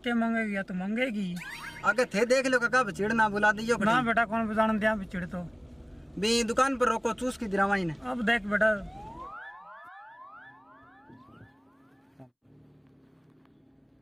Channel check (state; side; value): identical; both; correlation 1.00